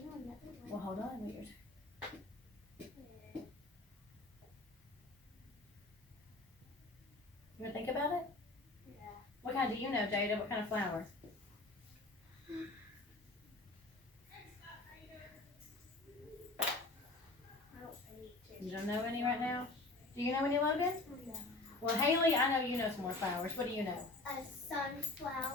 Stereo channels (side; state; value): right; quieter; 3.0 dB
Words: know another one. Well, hold on. You want to think about it? Yeah. What kind do you know, Jada? What kind of flower? You don't know any right now? Do you know any, Logan? No. Well, Haley, I know you know some more flowers. What do you know? A